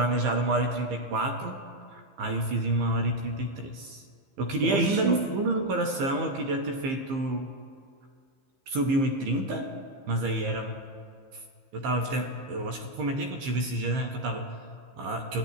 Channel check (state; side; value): late; left; 15 ms